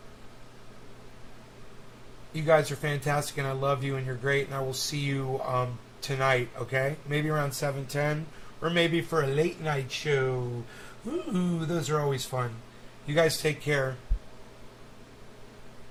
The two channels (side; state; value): both; identical; correlation 1.00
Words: you guys are fantastic and I love you and you're great and I will see you, tonight, okay? Maybe around 7:10 or maybe for a late night show. Ooh, those are always fun. You guys take care.